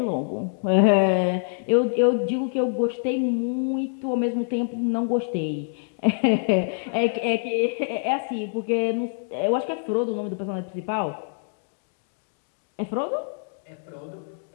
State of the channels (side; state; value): right; silent; digital silence